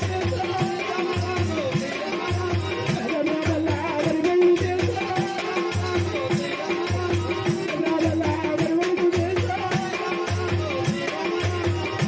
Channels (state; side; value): identical; both; correlation 1.00